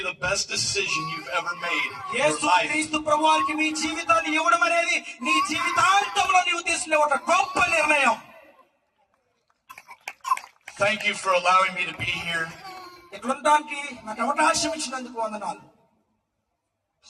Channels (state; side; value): identical; both; correlation 1.00